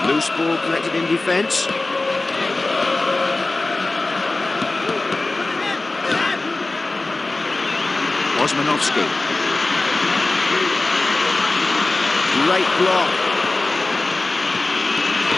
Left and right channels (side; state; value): right; quieter; 3.1 dB